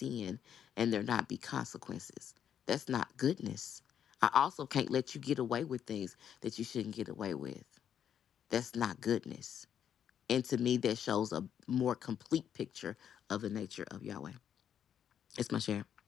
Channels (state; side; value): quieter; right; 9.1 dB